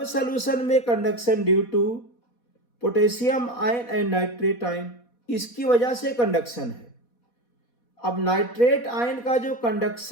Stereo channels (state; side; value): late; right; 4.1 ms